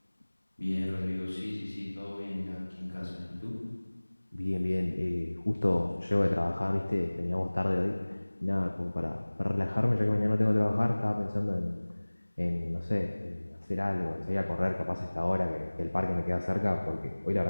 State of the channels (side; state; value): both; inverted; correlation -1.00